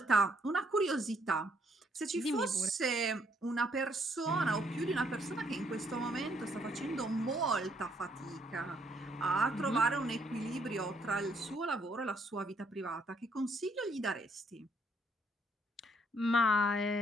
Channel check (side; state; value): both; normal; correlation 0.70